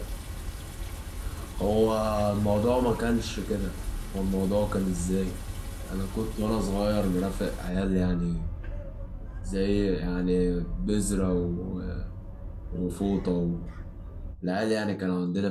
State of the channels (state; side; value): identical; both; correlation 1.00